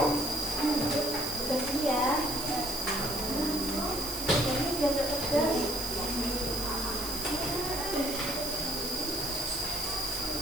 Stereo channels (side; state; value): right; noise; hiss, 6 dB below the sound